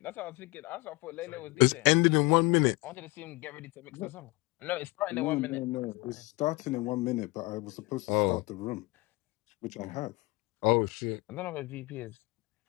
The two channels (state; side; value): quieter; right; 24.2 dB